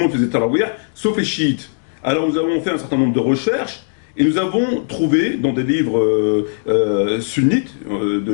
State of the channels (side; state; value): right; silent; digital silence